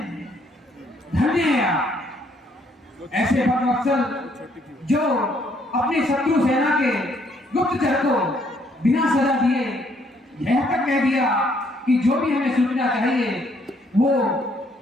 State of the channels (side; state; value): both; normal; correlation 0.68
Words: धन्य है आप, ऐसे भक्तवत्सल जो अपनी शत्रु सेना के गुप्तचर को बिना सजा दिए यह तक कह दिया कि जो भी हमें सूचना चाहिए वो